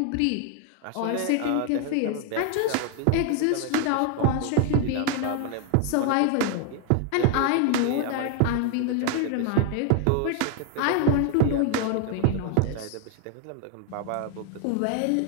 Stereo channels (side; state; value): both; different; correlation 0.00